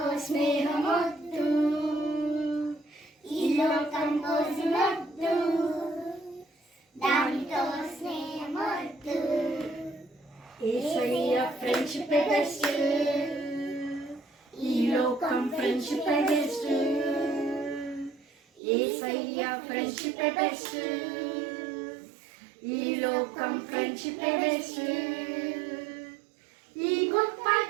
స్నేహమొద్దు. ఈ లోకం పోజులొద్దు, దానితో స్నేహమొద్దు. యేసయ్య ఫ్రెండ్షిప్ బెస్ట్, ఈ లోకం ఫ్రెండ్షిప్ బెస్ట్. యేసయ్య ఫ్రెండ్షిప్ బెస్ట్, ఈ లోకం ఫ్రెండ్షిప్ బెస్ట్. ఈ గొప్ప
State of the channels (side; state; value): left; drops out; at 18.6 s